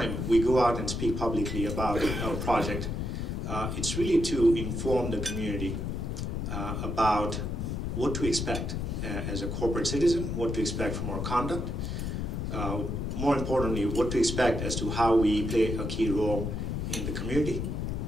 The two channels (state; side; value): noise; left; rumble, 2 dB below the sound